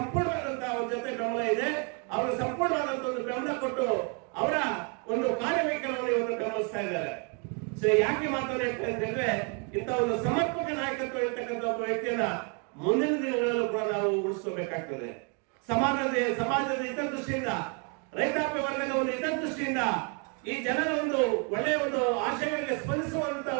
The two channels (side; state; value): left; quieter; 35.2 dB